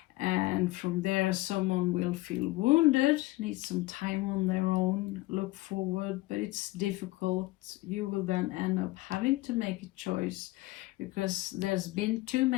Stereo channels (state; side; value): quieter; right; 19.9 dB